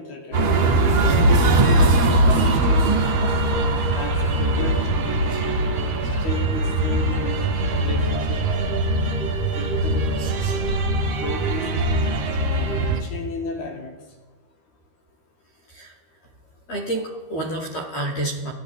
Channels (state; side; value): late; right; 13 ms